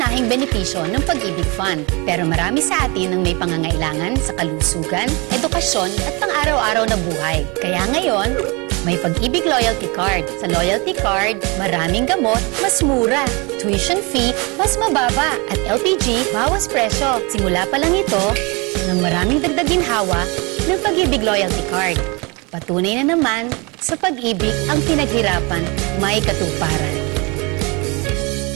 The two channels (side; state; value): left; quieter; 28.5 dB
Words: benepisyo ng Pag-ibig Fund. Pero marami sa atin ang may pangangailangan sa kalusugan, edukasyon at pang-araw-araw na buhay. Kaya ngayon, may Pag-ibig Loyalty Card. Sa Loyalty Card, maraming gamot, mas mura. Tuition fee, mas mababa. At LPG, bawas presyo. Simula pa lang ito ng maraming dagdag ginhawa ng Pag-ibig Loyalty Card. Patunay na naman, sa pag-ibig ang pinaghirapan may katuparan.